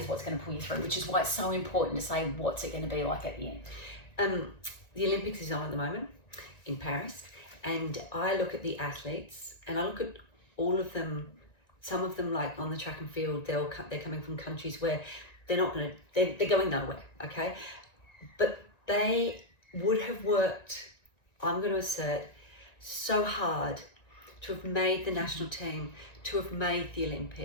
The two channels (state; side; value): late; right; 1.9 ms